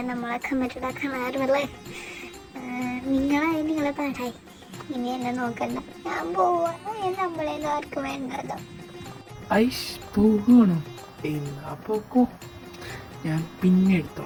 നമ്മളെ കമ്മിറ്റഡ് ആക്കാൻ ആരുമല്ലേ? നിങ്ങളെ പാടായി. ഇനി എന്നെ നോക്കണ്ട, ഞാൻ പോവാ. നമ്മളെയൊന്നും ആർക്കും വേണ്ടല്ലോ. ഐഷ് പോകണോ? എന്നാ പോക്കോ, ഞാൻ പിന്നെ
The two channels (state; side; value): identical; both; correlation 1.00